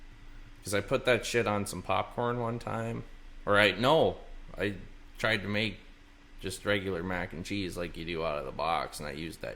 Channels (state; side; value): identical; both; correlation 1.00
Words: Because I put that shit on some popcorn one time. I tried to make just regular mac and cheese like you do out of the box, and I used